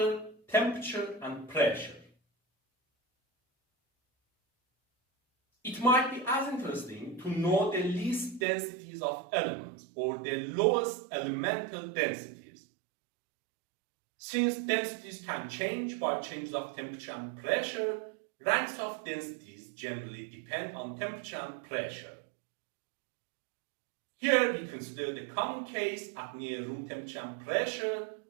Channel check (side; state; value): left; drops out; at 8.5 s